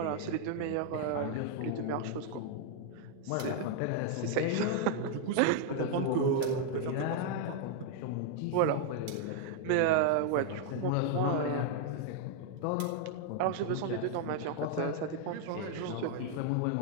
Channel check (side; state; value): both; different; correlation 0.00